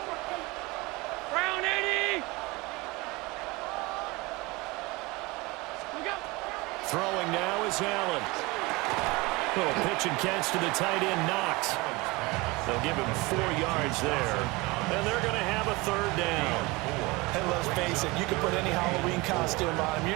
Brown 80. Throwing now is Allen. Little pitch and catch to the tight end, Knox. They'll give him 4 yards there. And they're going to have a 3rd down. And let's face it, you can put any Halloween costume on him.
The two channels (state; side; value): quieter; left; 23.7 dB